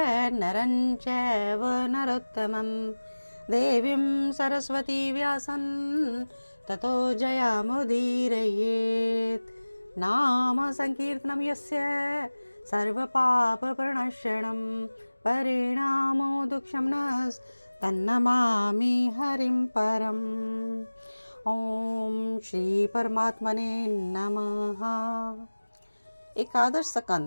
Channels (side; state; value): both; inverted; correlation -1.00